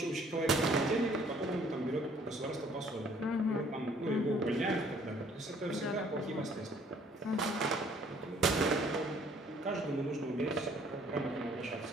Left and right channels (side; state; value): both; normal; correlation 0.59